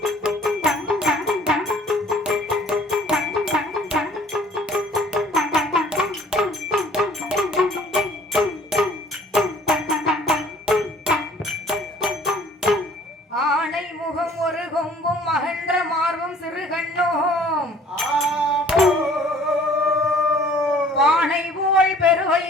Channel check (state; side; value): normal; both; correlation 0.54